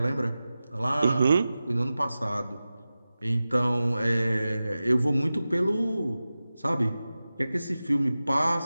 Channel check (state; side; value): inverted; both; correlation -0.95